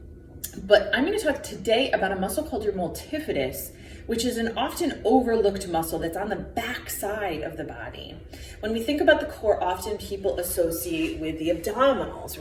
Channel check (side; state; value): both; identical; correlation 1.00